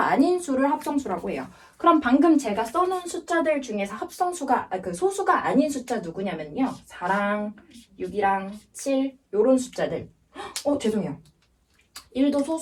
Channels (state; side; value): identical; both; correlation 1.00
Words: 아닌 수를 합성수라고 해요. 그럼 방금 제가 써놓은 숫자들 중에서 소수가 아닌 숫자 누구냐면요. 4랑 6이랑 7 요런 숫자들. 죄송해요. 1도